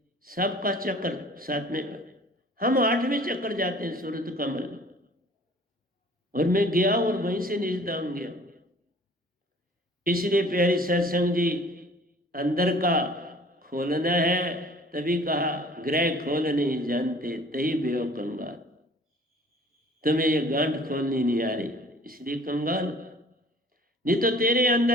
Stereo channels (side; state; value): both; normal; correlation 0.51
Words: सबका चक्र 7वें पे। हम 8वें चक्र जाते हैं, सूरत कमल, और मैं गया और वहीं से निजदाम गया। इसलिए प्यारी सत्संग जी, अंदर का खोलना है, तभी कहा ग्रह खोल नहीं जानते तही बेओ कंगाल। तुम्हें ये गांठ खोलनी नहीं आ रही, इसलिए कंगाल। नहीं तो तेरे